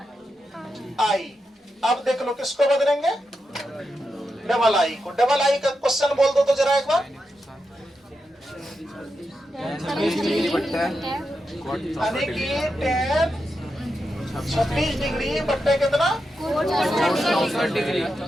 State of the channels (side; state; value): both; normal; correlation 0.87